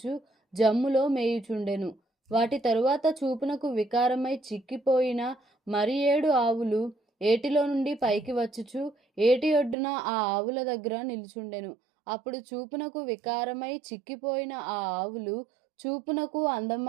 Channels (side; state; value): left; drops out; at 9.8 s